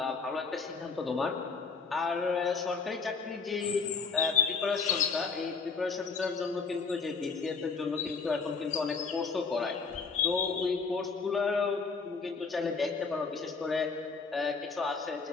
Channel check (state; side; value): quieter; right; 4.9 dB